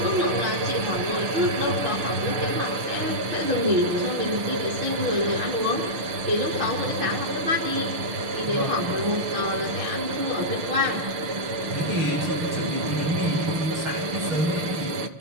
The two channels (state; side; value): late; left; 6.4 ms